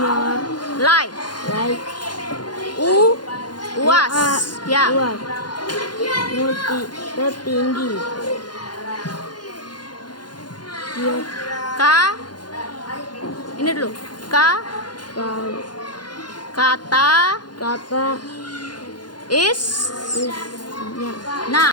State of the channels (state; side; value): late; right; 0.71 ms